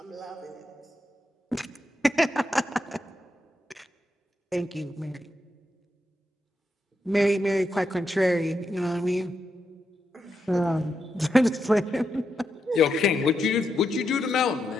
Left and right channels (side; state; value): both; normal; correlation 0.84